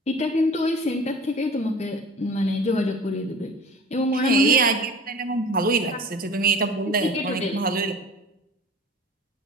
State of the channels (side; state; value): both; normal; correlation 0.41